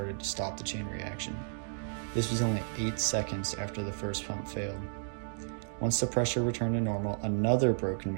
to stop the chain reaction. This was only 8 seconds after the first pump failed. Once the pressure returned to normal, another broken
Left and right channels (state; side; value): silent; left; digital silence